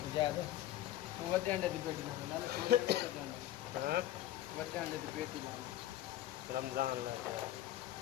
अंडे की पेटी लाओ वड्डे अंडे की पेटी लाओ रमजान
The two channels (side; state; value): right; quieter; 13.6 dB